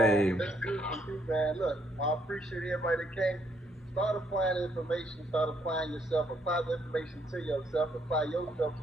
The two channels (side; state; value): both; normal; correlation 0.71